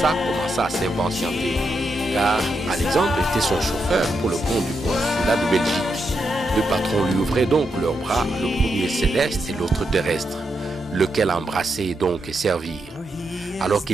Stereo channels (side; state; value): both; normal; correlation 0.83